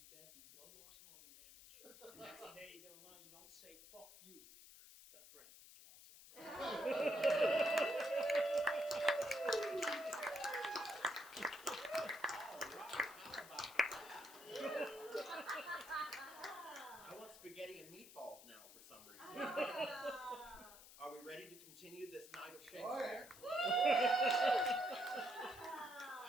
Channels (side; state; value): left; noise; hiss, 18 dB below the sound